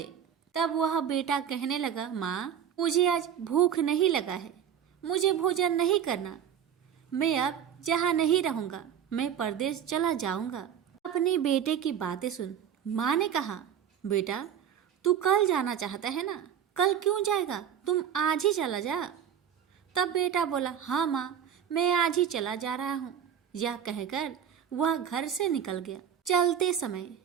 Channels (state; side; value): quieter; left; 8.9 dB